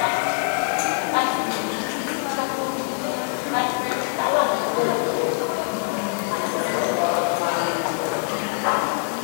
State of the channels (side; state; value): right; silent; 58 dB below the other